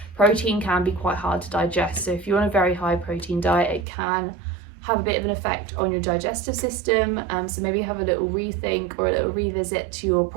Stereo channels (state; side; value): drops out; left; at 3.9 s